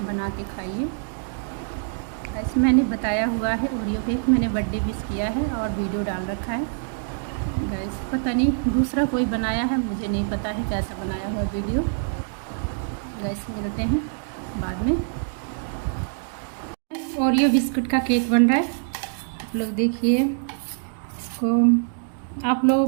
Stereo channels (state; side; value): silent; left; digital silence